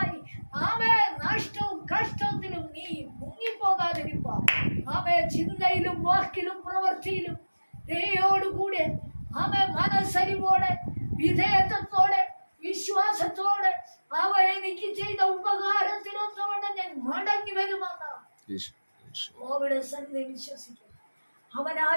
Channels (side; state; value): both; inverted; correlation -1.00